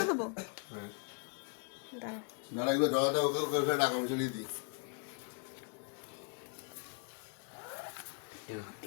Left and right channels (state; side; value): quieter; right; 37.4 dB